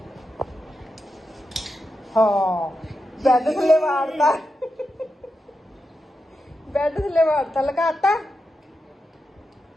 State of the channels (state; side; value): normal; both; correlation 0.88